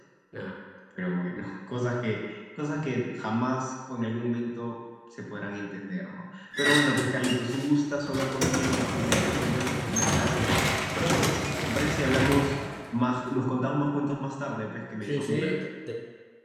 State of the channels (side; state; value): both; identical; correlation 1.00